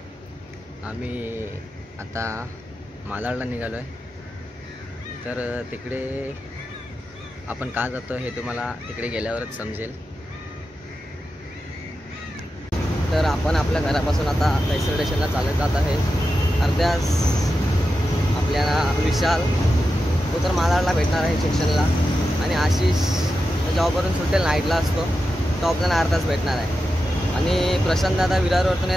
आम्ही आता मालाडला निघालो आहे. तर तिकडे आपण का जातो हे तुम्हाला तिकडे गेल्यावरच समजेल. तर आपण आपल्या घरापासून आता पैसर स्टेशनला चालत जात आहे. अर्ध्यास आपल्याला विशाल तो तर मालाडला भेटणार आहे सेक्शनला, आणि आशिष जॉबवरून सुटेल नाईटला असतो तो आपल्याला अर्धाच भेटणार आहे. आणि प्रशांत दादा विरारवरतून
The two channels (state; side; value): normal; both; correlation 0.90